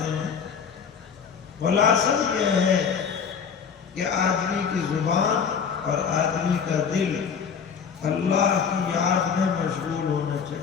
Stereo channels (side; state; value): right; quieter; 6.7 dB